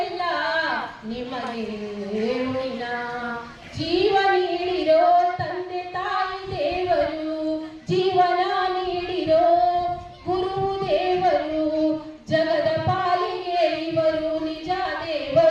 ನಿಮಗೆ ಋಣಿನ ಜೀವ ನೀಡಿರೋ ತಂದೆ ತಾಯಿ ದೇವರು ಜೀವನ ನೀಡಿರೋ ಗುರು ದೇವರು ಜಗದ ಪಾಲಿಗೆ ಇವರು ನಿಜ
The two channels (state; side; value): identical; both; correlation 1.00